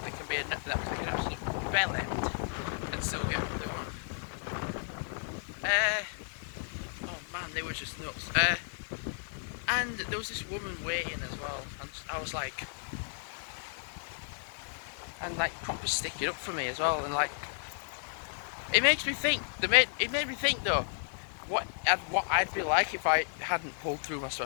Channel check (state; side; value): silent; right; 56 dB below the other